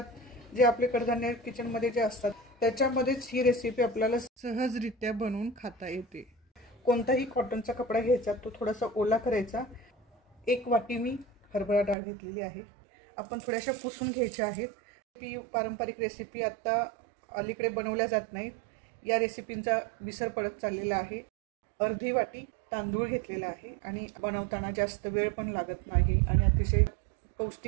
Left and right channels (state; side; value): drops out; left; at 12.0 s